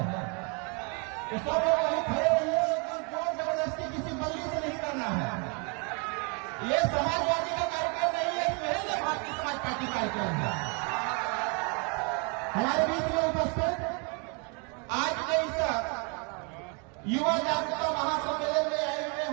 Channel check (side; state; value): left; quieter; 34.8 dB